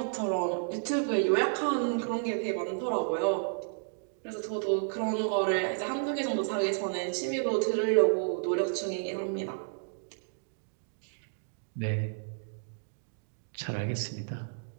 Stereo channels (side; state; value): left; silent; digital silence